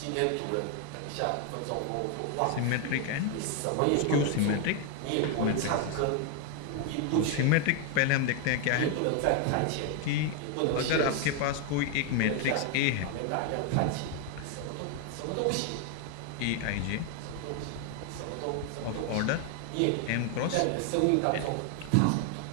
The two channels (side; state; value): both; different; correlation 0.01